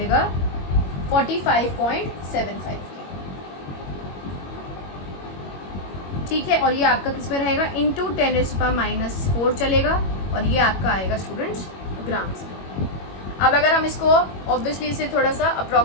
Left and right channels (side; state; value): right; late; 21 ms